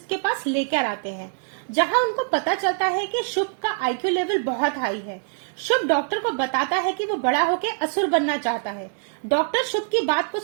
के पास लेकर आते हैं, जहां उनको पता चलता है कि शुभ का आईक्यू लेवल बहुत हाई है। शुभ डॉक्टर को बताता है कि वो बड़ा होकर असुर बनना चाहता है। डॉक्टर शुभ की बात को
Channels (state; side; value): silent; left; 63 dB below the other